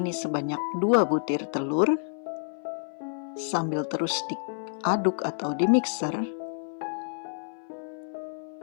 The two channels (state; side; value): silent; right; 57 dB below the other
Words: sebanyak 2 butir telur. Sambil terus diaduk atau dimixer.